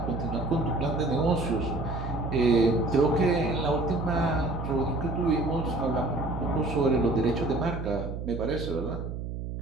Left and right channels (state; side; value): noise; right; hum, 6 dB below the sound